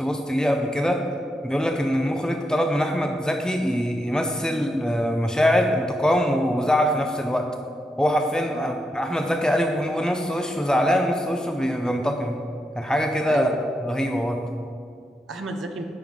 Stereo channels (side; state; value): both; normal; correlation 0.83